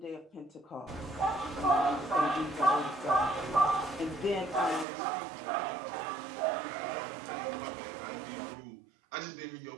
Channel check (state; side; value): drops out; left; at 4.9 s